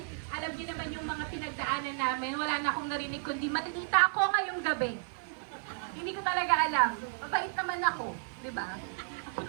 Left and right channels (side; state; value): left; silent; 56 dB below the other